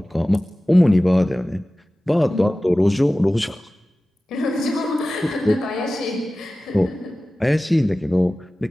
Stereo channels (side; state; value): both; normal; correlation 0.96